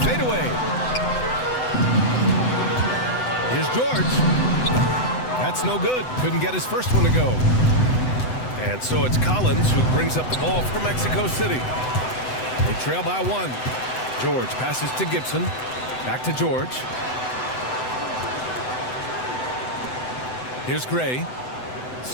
fadeaway. Here's George. That's no good. Couldn't get his first one to go. And so it's Collins who brings up the ball for Mexico City. They trail by 1. George passes to Gibson. Back to George. Here's Gray.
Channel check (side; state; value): right; late; 7.9 ms